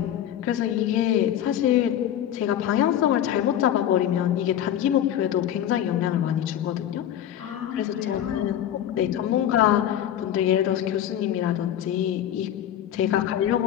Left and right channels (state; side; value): quieter; right; 10.9 dB